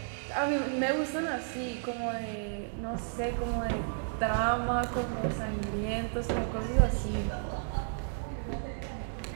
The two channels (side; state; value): left; silent; digital silence